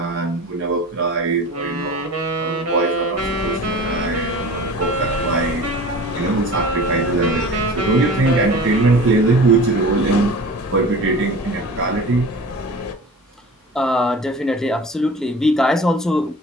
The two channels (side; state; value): both; normal; correlation 0.38